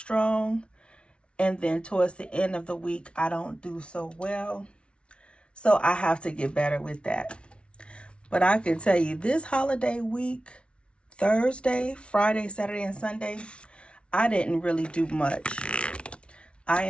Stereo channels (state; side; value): late; right; 0.059 ms